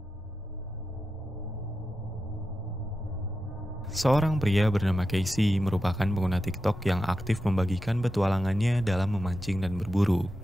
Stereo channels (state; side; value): normal; both; correlation 0.90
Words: Seorang pria bernama Casey merupakan pengguna TikTok yang aktif membagikan petualangannya dalam memancing dan berburu.